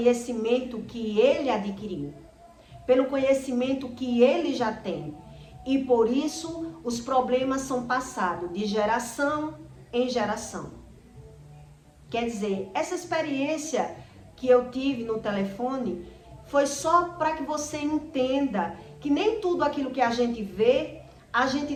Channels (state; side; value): identical; both; correlation 1.00